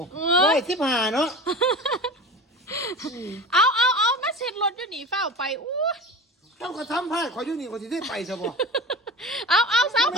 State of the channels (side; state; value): both; normal; correlation 0.32